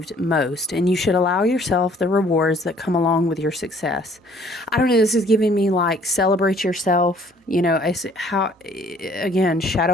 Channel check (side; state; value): both; normal; correlation 0.58